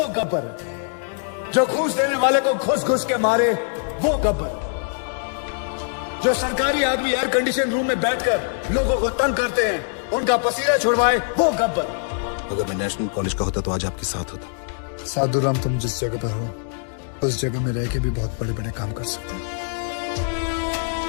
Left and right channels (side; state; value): right; silent; 63 dB below the other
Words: गब्बर है। जो घूस देने वाले को घुस घुस के मारे, वो गब्बर। जो सरकारी आदमी एयर कंडीशन रूम में बैठकर लोगों को तंग करते हैं, उनका पसीना छुड़वाए, वो गब्बर। अगर मैं नेशनल कॉलेज का होता तो आज आपके साथ होता। साधुराम, तुम जिस जगह पर हो उस जगह में रह के भी बहुत बड़े बड़े काम कर सकते हो।